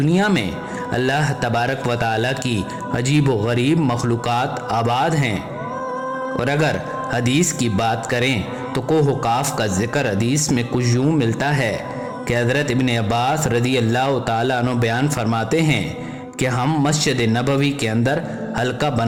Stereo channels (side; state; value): both; identical; correlation 1.00